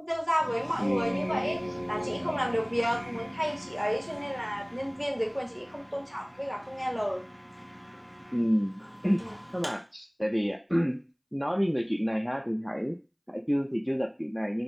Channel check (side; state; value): both; identical; correlation 1.00